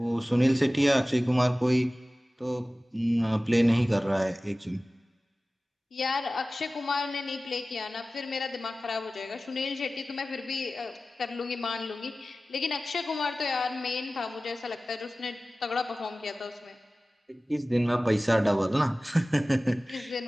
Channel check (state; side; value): normal; both; correlation 0.96